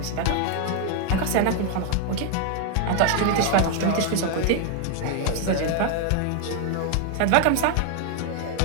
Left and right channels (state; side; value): different; both; correlation 0.00